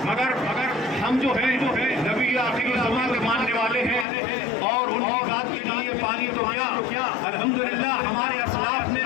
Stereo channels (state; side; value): drops out; right; at 4.0 s